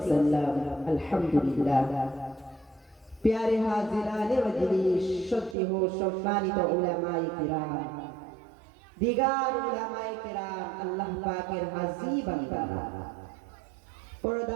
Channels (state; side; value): drops out; left; at 5.6 s